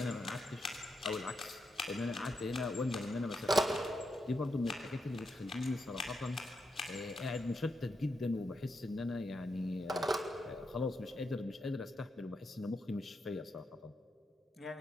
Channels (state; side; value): normal; both; correlation 0.83